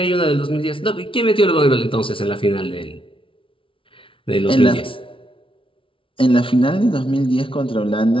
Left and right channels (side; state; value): right; late; 0.25 ms